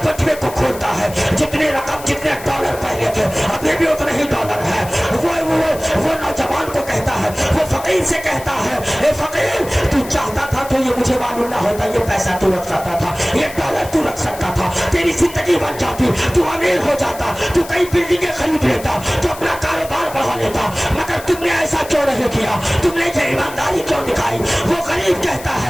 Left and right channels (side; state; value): left; noise; hiss, 16 dB below the sound